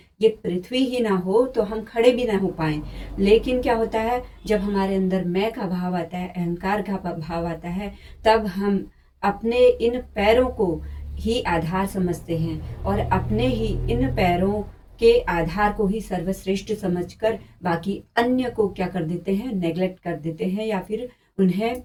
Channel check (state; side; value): identical; both; correlation 1.00